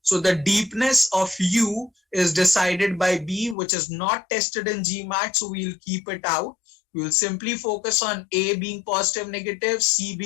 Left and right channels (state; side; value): drops out; right; at 3.6 s